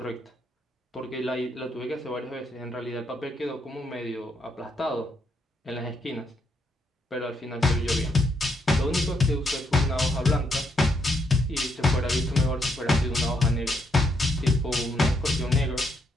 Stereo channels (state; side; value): normal; both; correlation 0.77